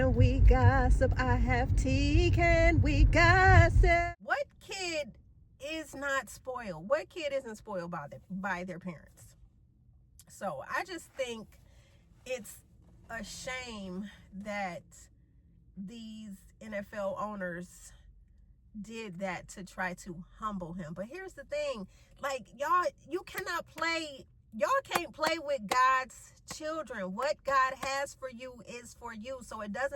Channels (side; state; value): both; identical; correlation 1.00